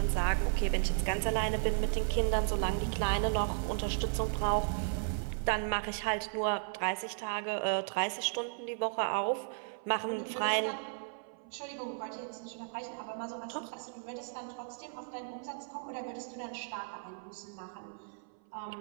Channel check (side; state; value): left; silent; 54 dB below the other